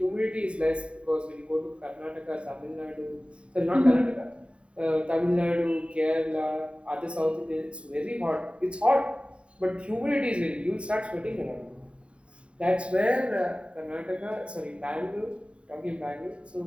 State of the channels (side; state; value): left; late; 0.058 ms